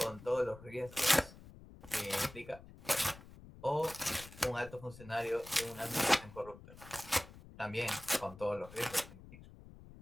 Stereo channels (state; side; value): noise; left; rumble, 18 dB below the sound